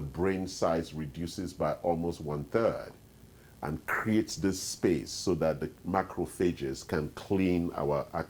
size reduces by almost 1/3 and creates this space so that the macrophages can clean our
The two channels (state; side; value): identical; both; correlation 1.00